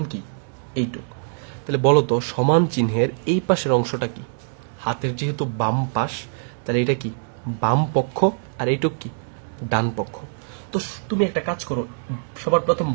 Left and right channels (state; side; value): silent; left; digital silence